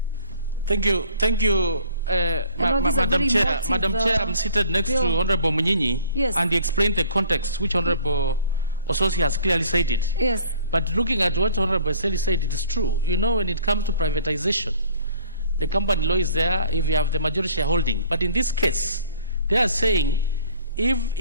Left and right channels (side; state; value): both; inverted; correlation -0.53